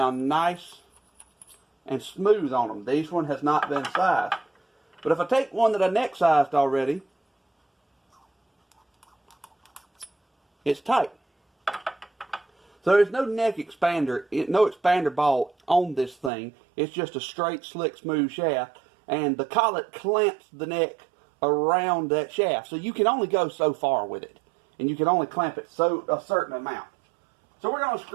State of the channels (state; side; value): drops out; left; at 16.3 s